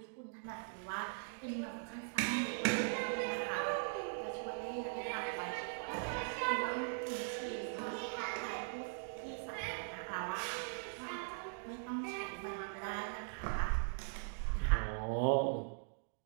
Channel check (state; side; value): silent; left; digital silence